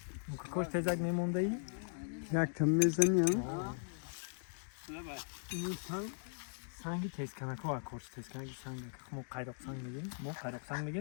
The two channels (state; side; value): silent; right; digital silence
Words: کوش تزک میمونده ای یک کم میزنی این سنگی تیز کنک ها کورس تیز کنک سنگ ما قیرق سنگ